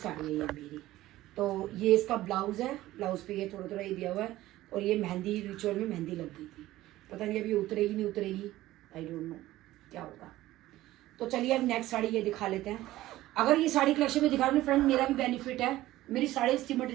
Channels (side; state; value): left; quieter; 15.9 dB